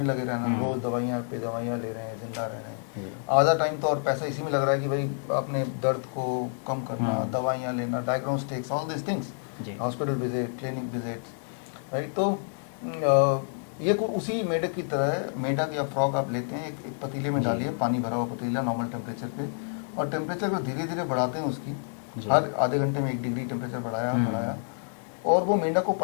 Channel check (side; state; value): right; silent; digital silence